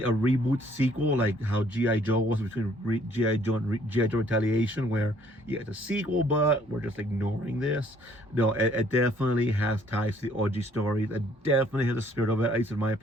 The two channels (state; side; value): normal; both; correlation 0.62